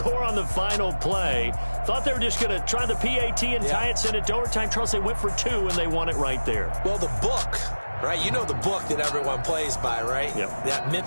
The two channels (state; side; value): inverted; both; correlation -1.00